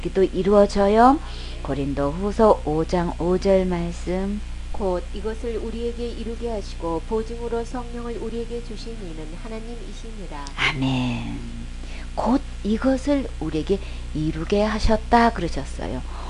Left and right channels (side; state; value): both; identical; correlation 1.00